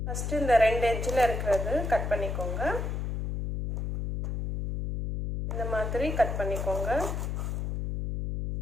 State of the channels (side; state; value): left; noise; hum, 2 dB below the sound